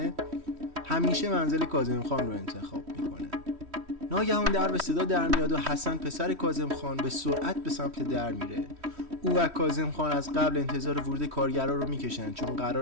همیشه منزل کاظم خان رو انتخاب میکنه. ناگهان در به صدا در میاد و حسن پسر کاظم خان به سرعت به سمت در میره. او و کاظم خان از قبل انتظار ورود کارگرا رو میکشن، چون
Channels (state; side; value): late; left; 3.1 ms